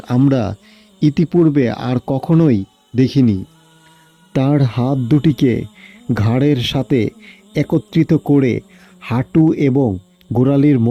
আমরা ইতিপূর্বে আর কখনোই দেখিনি। তার হাত দুটিকে ঘাড়ের সাথে একত্রিত করে হাঁটু এবং গোড়ালির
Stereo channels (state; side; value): identical; both; correlation 1.00